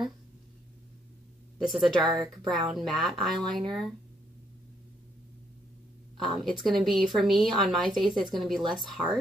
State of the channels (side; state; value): both; normal; correlation 0.72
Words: This is a dark brown matte eyeliner. It's going to be, for me, on my face, it's going to be less